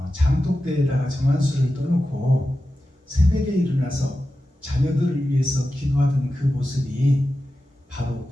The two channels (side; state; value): both; normal; correlation 0.93